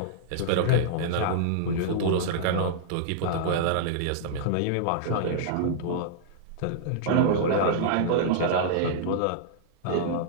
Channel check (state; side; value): different; both; correlation -0.02